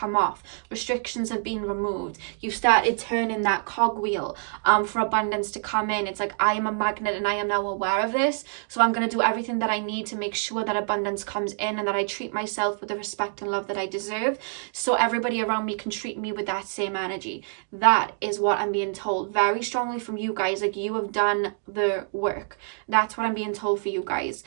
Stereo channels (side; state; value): left; silent; 61 dB below the other